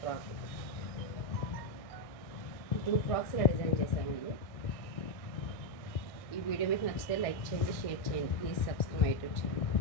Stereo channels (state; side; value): late; right; 1.6 ms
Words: ఫ్రాక్. 2 ఫ్రాక్స్ ఇలా డిజైన్ చేశామండి. ఈ వీడియో మీకు నచ్చితే లైక్ చేయండి, షేర్ చేయండి. Please subscribe my YouTube channel.